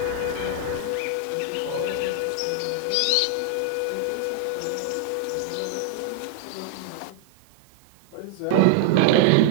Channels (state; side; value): different; both; correlation 0.00